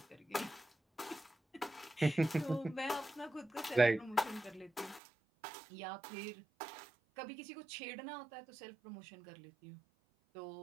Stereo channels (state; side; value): drops out; left; at 5.0 s